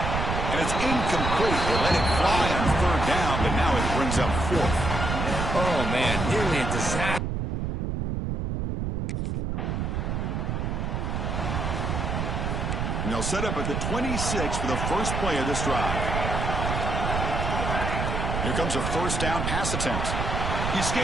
And it's incomplete. They let it fly on 3rd down, but now it brings up 4th. Oh, man, nearly a disaster. And they'll set up at the 26 for the first play of this drive. Here comes a first down pass attempt. He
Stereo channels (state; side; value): noise; right; rumble, 1 dB below the sound